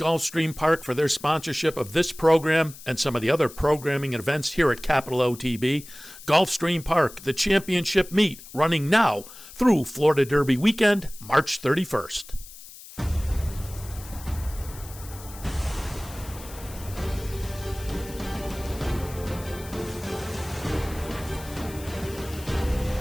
Park for their sponsorship of this program and some of the other programming and events here at Capital OTB. Gulfstream Park, the championship meet, running now through Florida Derby weekend, March 31st.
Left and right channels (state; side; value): noise; left; hiss, 17 dB below the sound